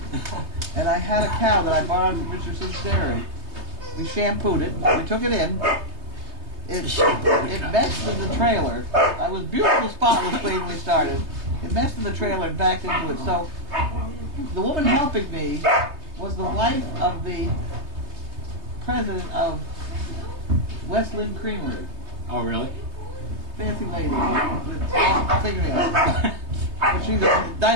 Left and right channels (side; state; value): left; late; 3.3 ms